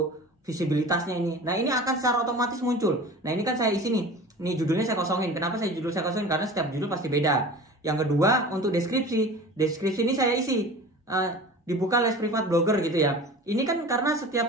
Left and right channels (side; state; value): both; normal; correlation 0.38